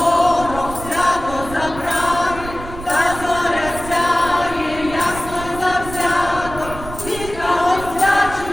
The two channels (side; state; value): right; noise; rumble, 12 dB below the sound